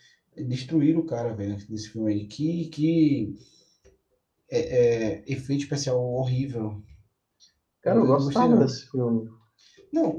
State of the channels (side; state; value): both; identical; correlation 1.00